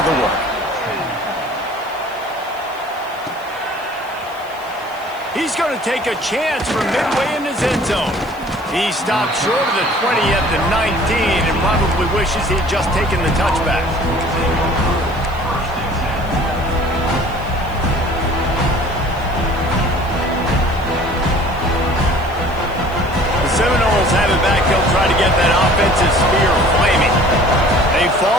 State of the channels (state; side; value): noise; right; hiss, 25 dB below the sound